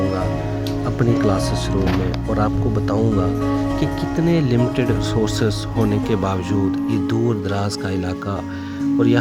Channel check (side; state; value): both; identical; correlation 1.00